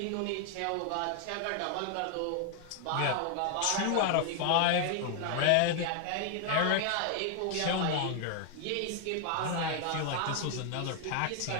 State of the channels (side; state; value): both; different; correlation 0.00